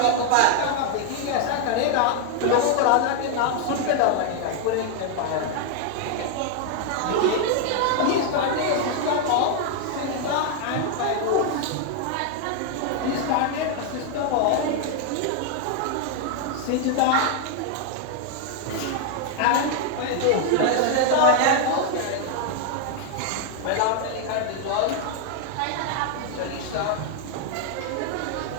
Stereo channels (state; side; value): different; both; correlation 0.00